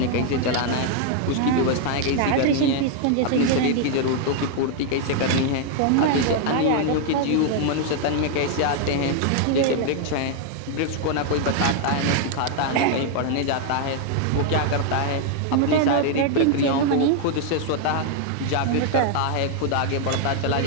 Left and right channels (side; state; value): both; different; correlation 0.00